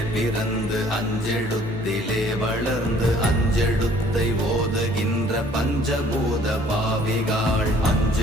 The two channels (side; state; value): both; normal; correlation 0.57